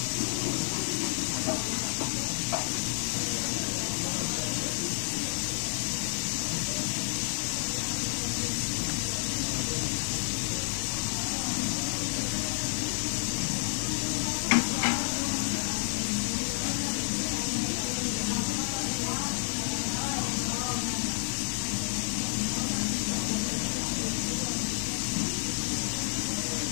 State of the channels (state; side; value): silent; right; digital silence